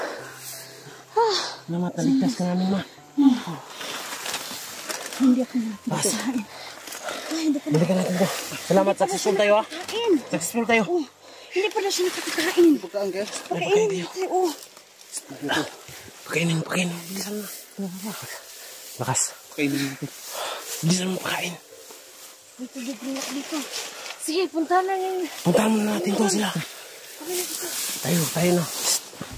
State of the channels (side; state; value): both; identical; correlation 1.00